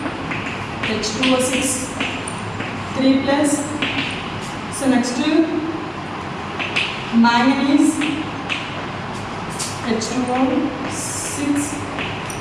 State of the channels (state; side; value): identical; both; correlation 1.00